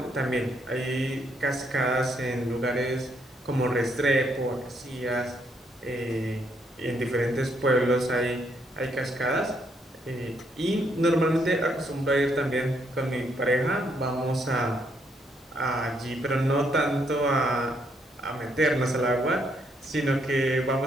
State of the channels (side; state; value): both; normal; correlation 0.73